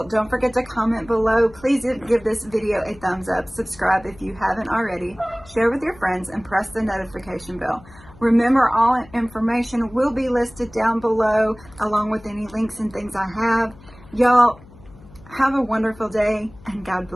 don't forget to comment below. Please give this video a thumbs up. Subscribe if you haven't already. Share with your friends and press the notification bell. Remember, all information will be listed down below, along with any links and things I have. Y'all, have a wonderful day, and God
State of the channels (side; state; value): left; noise; hum, 22 dB below the sound